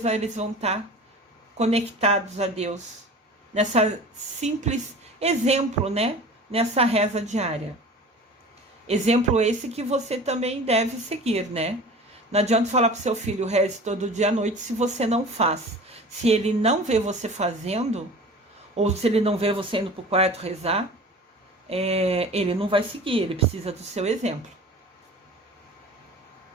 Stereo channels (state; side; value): normal; both; correlation 0.39